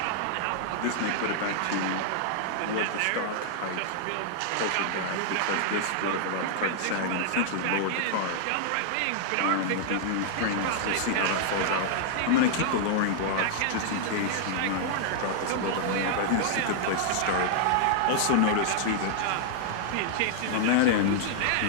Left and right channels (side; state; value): both; different; correlation -0.01